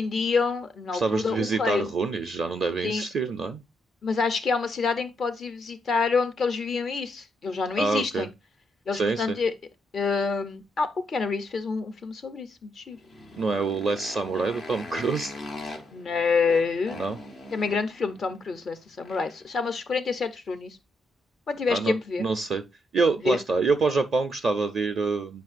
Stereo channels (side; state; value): both; normal; correlation 0.77